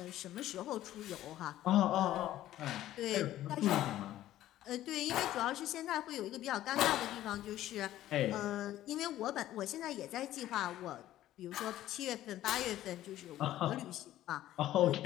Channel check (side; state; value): right; quieter; 13.7 dB